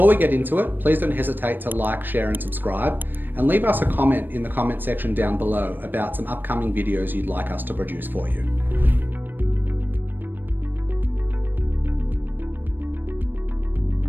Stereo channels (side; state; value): left; late; 0.093 ms